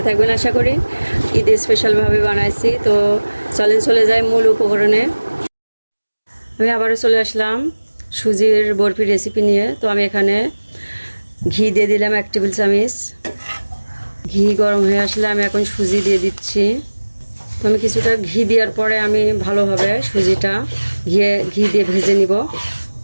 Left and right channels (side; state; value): both; inverted; correlation -1.00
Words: থাকবেন আশা করি। ঈদে স্পেশালভাবে বানাইছি। তো চলে যাই মূল উপকরণে। আমি আবারও চলে আসলাম সুজির বরফির রেসিপি নিয়ে। তো আমি এখানে ঘি দিয়ে দিলাম 1 টেবিল চামচ। ঘি গরম হয়ে আসলে আমি এখন সুজি দিয়ে দিচ্ছি। তো আমি কিছুটা ঘি দেওয়ার পরে আমি ভালোভাবে সুজিটা ঘি দিয়ে ভেজে নিব।